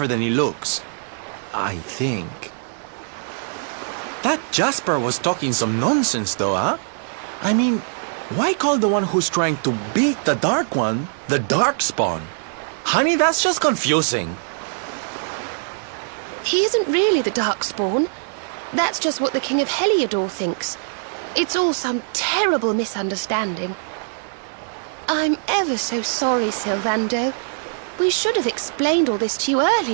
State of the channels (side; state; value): left; silent; digital silence